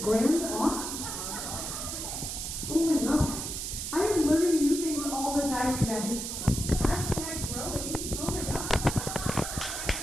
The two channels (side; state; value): right; noise; hiss, 5 dB below the sound